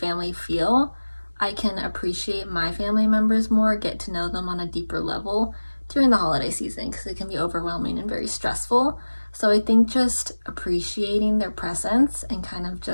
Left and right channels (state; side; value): inverted; both; correlation -1.00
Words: feel, I can appreciate my family members more, get to know them on a deeper level during the holiday season, because it can be overwhelming and very stressful. So I think just appreciating their presence and kind of